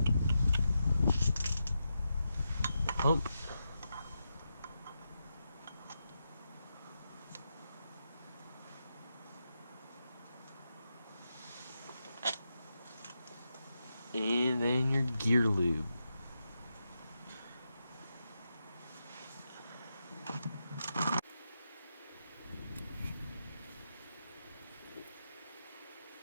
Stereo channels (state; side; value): inverted; both; correlation -0.87